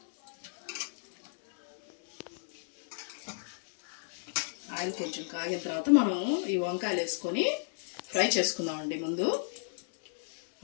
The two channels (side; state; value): right; silent; digital silence